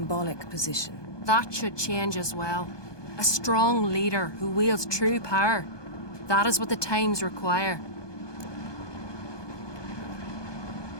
position. That should change as well. A strong leader who wields true power. That is what the times require.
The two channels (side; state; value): right; late; 1.2 ms